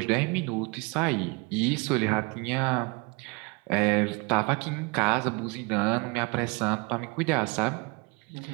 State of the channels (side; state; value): left; quieter; 28.9 dB